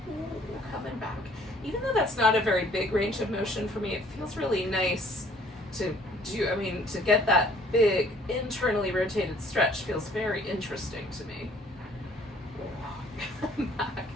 coming back. Even though that's not a very big range of motion for me, it feels really nice to do. I mean, to get that big internally rotated stretch feels very interesting to me. Back.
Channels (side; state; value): both; normal; correlation 0.58